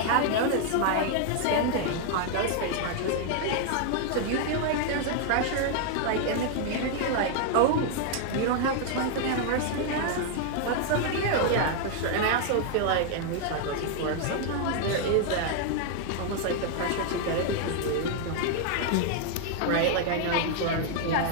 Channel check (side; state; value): both; different; correlation 0.00